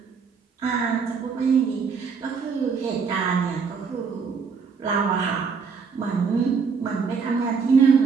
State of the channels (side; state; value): left; quieter; 5.6 dB